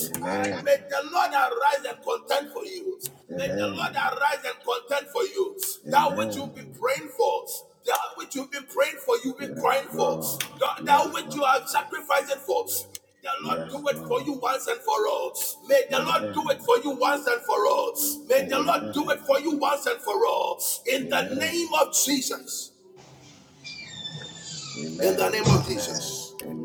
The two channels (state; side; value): identical; both; correlation 1.00